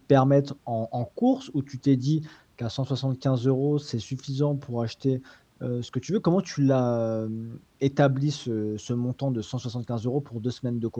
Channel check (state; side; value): identical; both; correlation 1.00